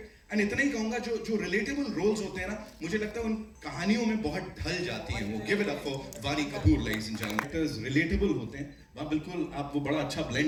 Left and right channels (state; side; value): identical; both; correlation 1.00